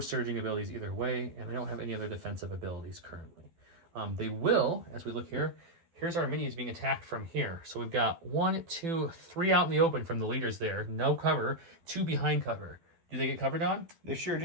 surging abilities either way, and they don't have any other defensive abilities currently. They will, as we look here, here's our minis being attacked from here. So we've got 1, 2, 3 out in the open from the leaders there. No cover. 2 behind cover. Do they get covered on? They sure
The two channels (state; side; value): late; left; 12 ms